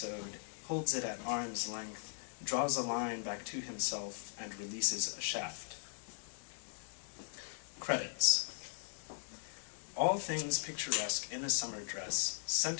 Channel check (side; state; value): right; silent; digital silence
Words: holds it at arm's length, draws a line back to himself, and releases a shaft. Credits. All things picturesque in a summer dress,